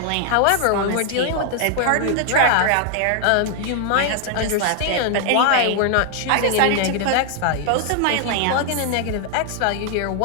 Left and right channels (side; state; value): both; different; correlation 0.00